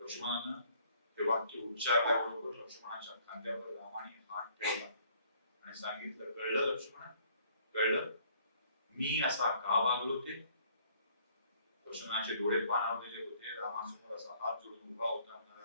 ते वाक्य उच्चारल्याबरोबर लक्ष्मणाच्या खांद्यावर रामाने हात ठेवला आणि सांगितलं कळलं लक्ष्मण? कळलं मी असा का वागलो ते? लक्ष्मणाचे डोळे पाणावलेले होते. रामासमोर असा हात जोडून उभा होता.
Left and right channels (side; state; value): both; inverted; correlation -0.61